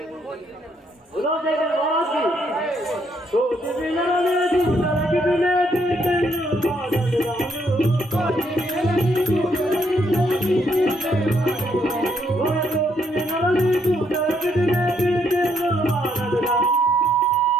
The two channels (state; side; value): normal; both; correlation 0.73